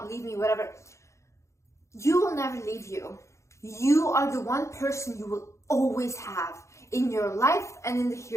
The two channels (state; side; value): late; right; 0.14 ms